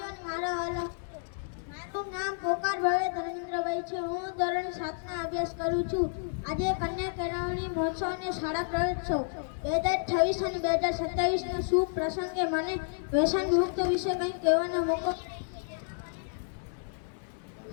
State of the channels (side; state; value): right; silent; digital silence